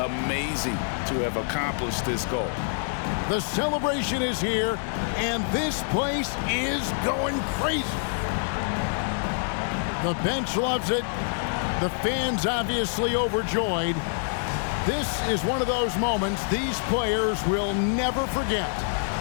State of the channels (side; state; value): right; silent; digital silence